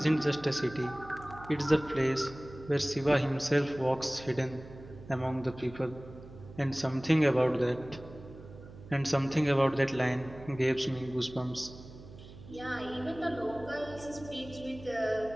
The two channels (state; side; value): noise; right; hum, 17 dB below the sound